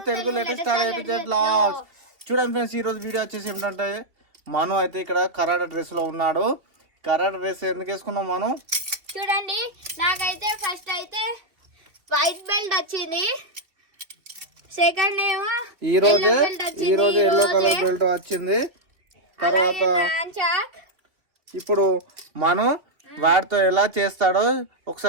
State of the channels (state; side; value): late; left; 2.8 ms